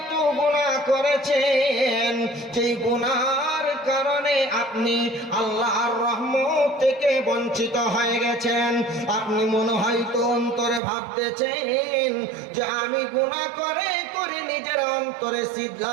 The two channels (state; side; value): drops out; left; at 10.8 s